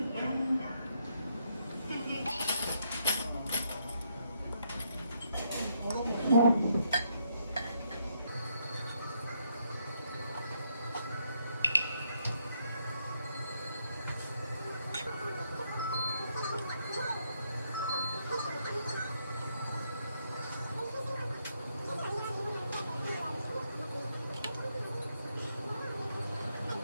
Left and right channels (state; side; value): inverted; both; correlation -0.76